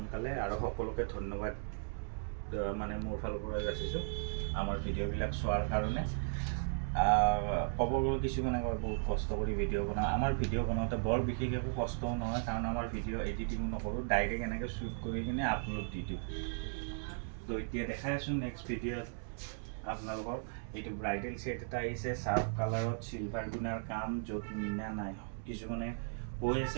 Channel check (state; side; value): silent; left; digital silence